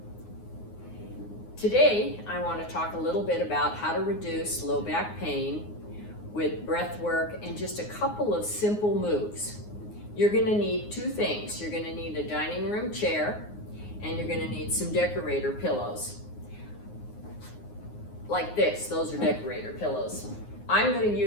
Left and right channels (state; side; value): late; right; 9.6 ms